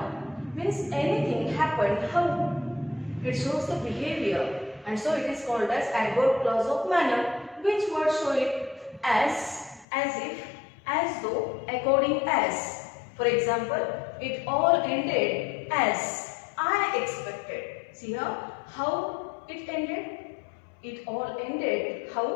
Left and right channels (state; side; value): drops out; right; at 9.9 s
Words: Means anything happened, how? It shows the behavior. And so it is called as adverb clause of manner. Which word show it? As if, as though, according as. For example, it all ended as I expected. See here, how it ended? It all ended,